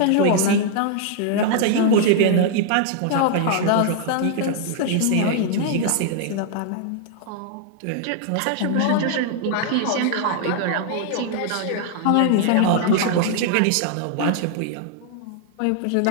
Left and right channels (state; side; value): different; both; correlation 0.00